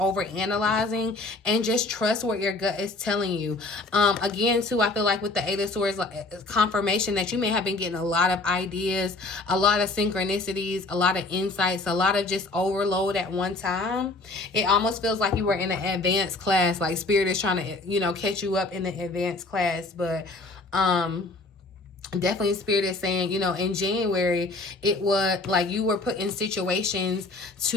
and just trust what your gut is telling you. Again, too, I feel like with the Eight of Swords, like, confirmation that you may have been getting a lot of ideas, a lot of synchronicities, a lot of insights, a lot of just overload at one time. It almost feels like you were in an advanced class, like Spirit is trying to, you know, catch you up in the advanced class. But definitely Spirit is saying, you know, in January, it was like you were put in situations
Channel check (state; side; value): quieter; right; 3.2 dB